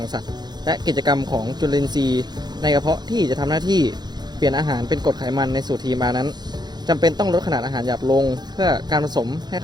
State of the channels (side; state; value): left; late; 0.20 ms